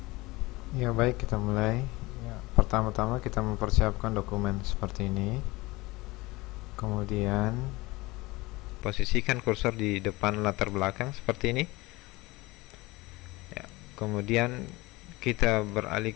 Ya, baik, kita mulai. Ya, pertama-tama kita mempersiapkan dokumen seperti ini. Kemudian posisikan kursor di depan latar belakang seperti ini. Ya, kemudian kita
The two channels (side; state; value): right; quieter; 21.6 dB